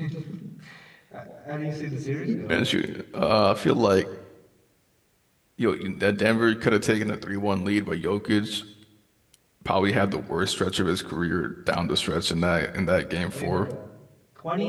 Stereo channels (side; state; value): both; identical; correlation 1.00